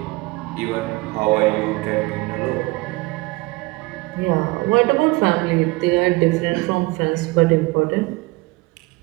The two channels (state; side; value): quieter; left; 23.0 dB